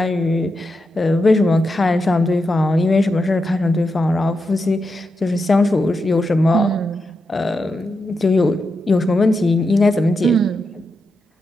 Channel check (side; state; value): both; normal; correlation 0.86